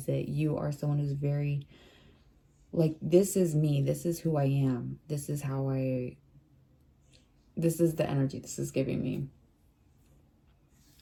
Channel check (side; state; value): both; identical; correlation 1.00